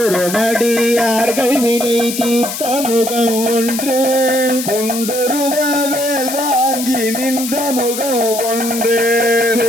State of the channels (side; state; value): left; noise; hiss, 6 dB below the sound